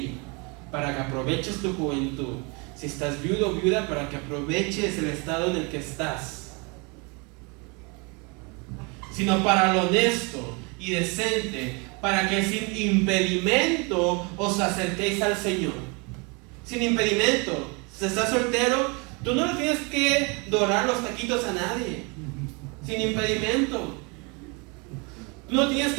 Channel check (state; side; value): quieter; left; 30.9 dB